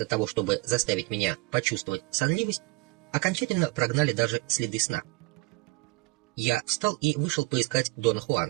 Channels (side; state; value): left; quieter; 24.1 dB